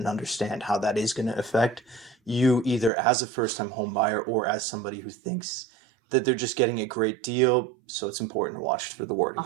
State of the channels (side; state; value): left; drops out; at 2.9 s